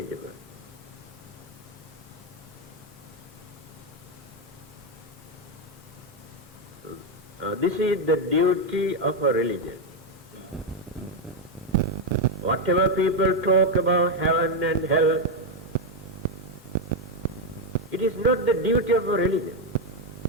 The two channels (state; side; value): normal; both; correlation 0.04